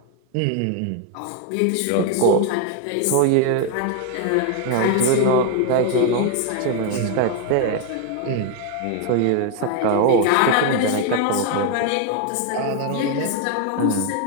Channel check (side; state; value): both; different; correlation 0.00